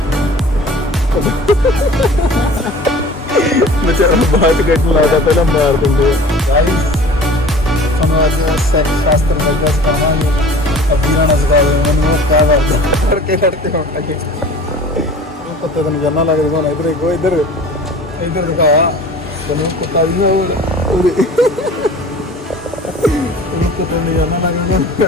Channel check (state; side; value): normal; both; correlation 0.43